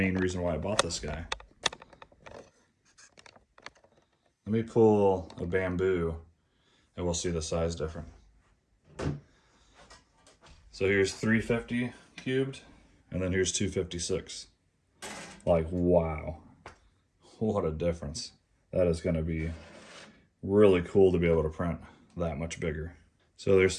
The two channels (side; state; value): both; identical; correlation 1.00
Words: reason why I bought this guy. Let me pull a Bambu and we'll see the size difference. So here's 350 cubed, and then here's 256. Like, wow, what a difference. That is gonna be really cool to be able to print that much bigger. So there's